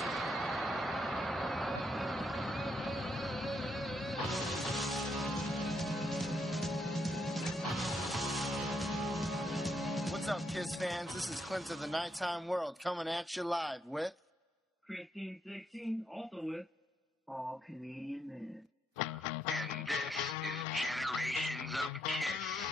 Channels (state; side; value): normal; both; correlation 0.77